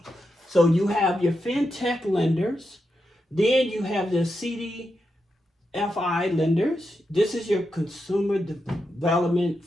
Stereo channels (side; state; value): both; normal; correlation 0.86